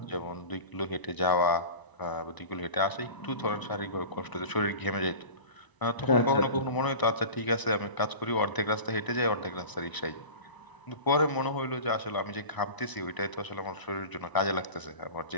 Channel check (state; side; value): late; right; 1.0 ms